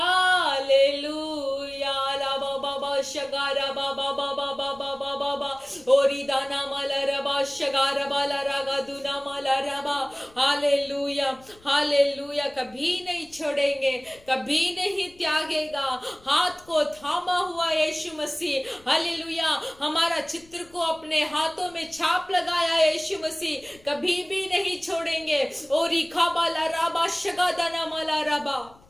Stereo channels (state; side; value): noise; left; rumble, 27 dB below the sound